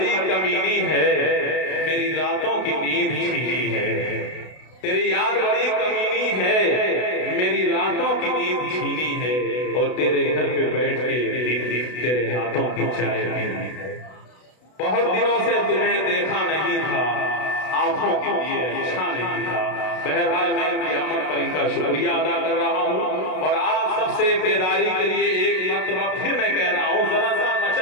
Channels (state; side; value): late; right; 32 ms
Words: کمینی ہے، میری راتوں کی نیند چھینی ہے، تیری یاد بڑی کمینی ہے، میری راتوں کی نیند چھینی ہے، اور تیرے گھر پہ بیٹھ کے تیرے ہاتھوں کی چائے پینی ہے۔ بہت دنوں سے تمہیں دیکھا نہیں تھا، آنکھوں کے لیے اچھا نہیں تھا۔ بہرحال میں ان کی آمد پر ان کا شکریہ ادا کر رہا ہوں، اور آپ سب سے بیداری کے لیے ایک مرتبہ پھر میں کہہ رہا ہوں، ذرا سا